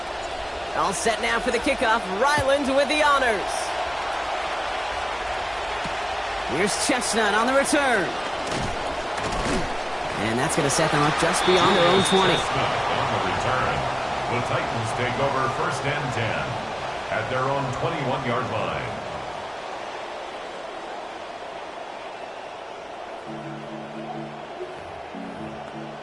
All set now for the kickoff. Ryland with the honors. Here's Chestnut on the return. And that's going to set them up just beyond their own 20. Chestnut on the return. The Titans take over first and 10 at their own 21-yard line.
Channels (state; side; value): identical; both; correlation 1.00